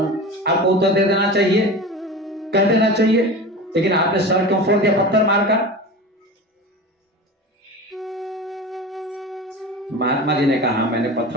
आपको उत्तर दे देना चाहिए कह देना चाहिए, लेकिन आपने सर क्यों फोड़ दिया पत्थर मारकर? महात्मा जी ने कहा मैंने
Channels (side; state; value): both; normal; correlation 0.31